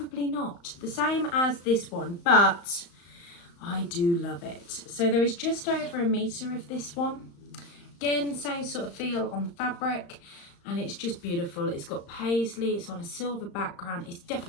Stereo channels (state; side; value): late; right; 35 ms